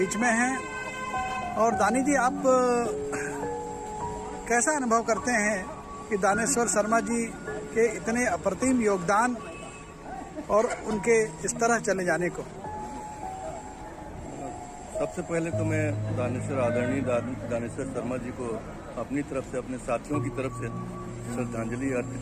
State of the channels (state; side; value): identical; both; correlation 1.00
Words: में हैं। और दानी जी, आप कैसा अनुभव करते हैं कि दानेश्वर शर्मा जी के इतने अप्रतिम योगदान और उनके इस तरह चले जाने को? सबसे पहले तो मैं आदरणीय दानेश्वर शर्मा जी को अपनी तरफ से, अपने साथियों की तरफ से श्रद्धांजलि